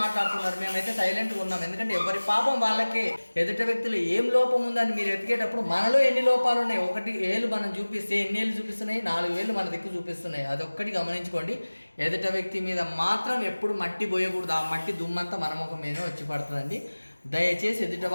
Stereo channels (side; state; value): both; inverted; correlation -1.00